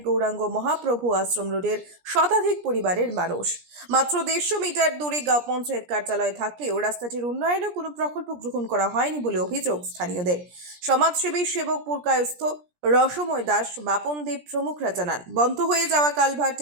গৌরাঙ্গ মহাপ্রভু আশ্রম রোডের শতাধিক পরিবারের মানুষ। মাত্র 150 মিটার দূরে গাঁও পঞ্চায়েত কার্যালয় থাকলেও রাস্তাটির উন্নয়নে কোনো প্রকল্প গ্রহণ করা হয়নি বলে অভিযোগ স্থানীয়দের। সমাজসেবী সেবক পুরকায়স্থ রসময় দাস, বাপন দেব প্রমুখরা জানান, বন্ধ হয়ে যাওয়া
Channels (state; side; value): late; left; 17 ms